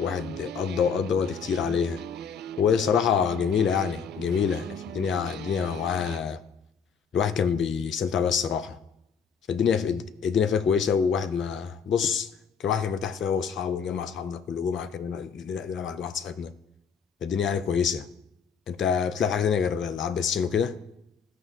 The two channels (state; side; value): quieter; right; 6.4 dB